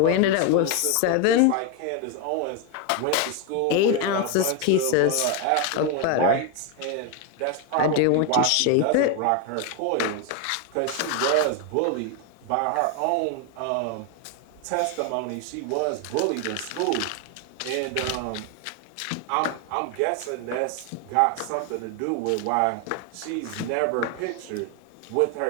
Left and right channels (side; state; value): both; different; correlation 0.01